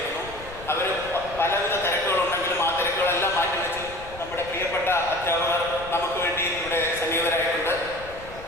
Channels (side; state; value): left; noise; rumble, 16 dB below the sound